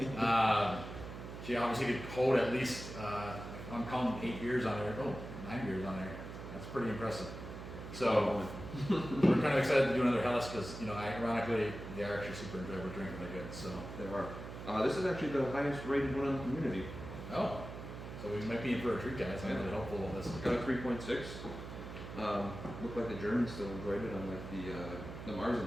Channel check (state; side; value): noise; right; hum, 10 dB below the sound